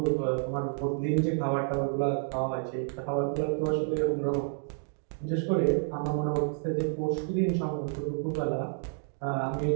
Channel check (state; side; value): silent; left; 58 dB below the other